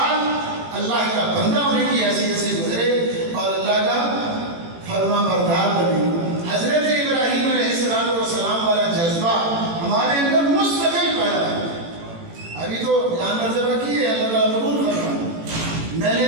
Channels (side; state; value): left; late; 18 ms